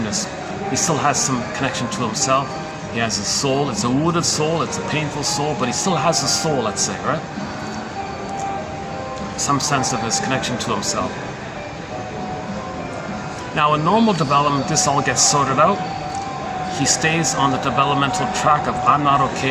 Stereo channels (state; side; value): identical; both; correlation 1.00